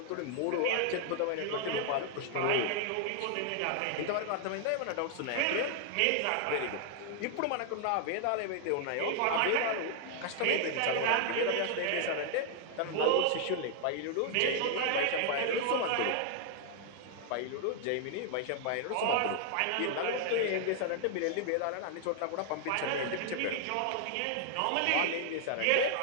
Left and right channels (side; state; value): both; different; correlation 0.00